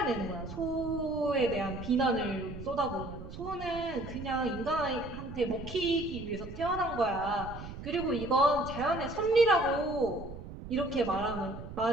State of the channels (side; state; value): right; noise; rumble, 11 dB below the sound